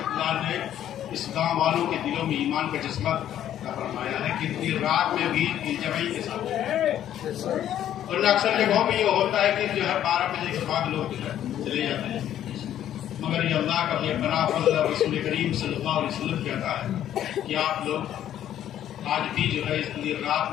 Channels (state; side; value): quieter; right; 11.2 dB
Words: نے اس گاؤں والوں کے دلوں میں ایمان کا جذبہ فرمایا ہے کہ دیر رات میں بھی جمعی کے ساتھ، ورنہ اکثر جگہوں میں یہ ہوتا ہے کہ جو ہے 12 بجے کے بعد لوگ جو ہے چلے جاتے ہیں، مگر یہ اللہ کا بے پناہ فضل رسول کریم صلی اللہ علیہ وسلم کہتا ہے کہ آپ لوگ آج بھی جو ہے اس لیے رات